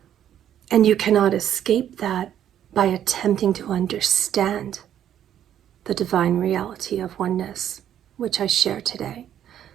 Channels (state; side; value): quieter; left; 10.5 dB